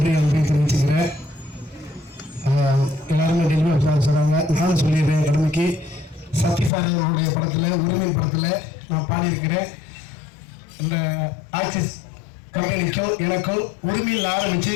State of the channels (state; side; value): drops out; right; at 6.7 s